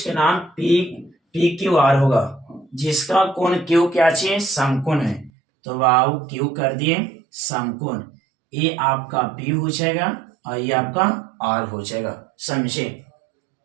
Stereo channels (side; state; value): left; drops out; at 5.3 s